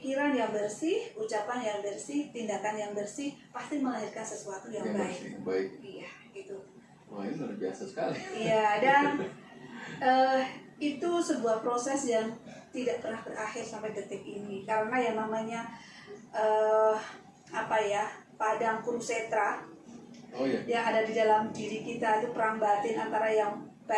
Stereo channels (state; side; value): identical; both; correlation 1.00